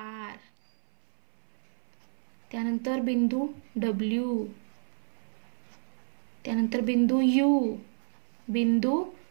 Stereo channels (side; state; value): left; silent; 58 dB below the other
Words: त्यानंतर बिंदू W, त्यानंतर बिंदू U, बिंदू